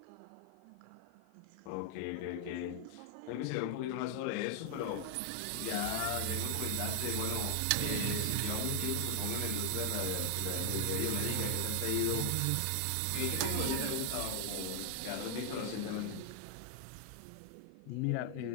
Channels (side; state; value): both; different; correlation 0.00